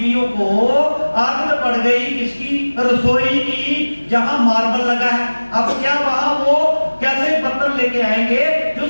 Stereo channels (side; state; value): both; inverted; correlation -1.00